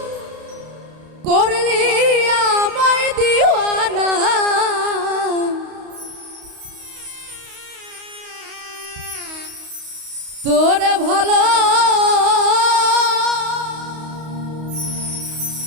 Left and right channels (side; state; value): left; late; 32 ms